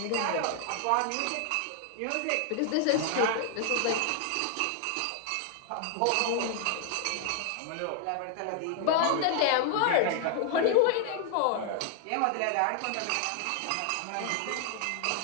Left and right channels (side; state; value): both; different; correlation 0.00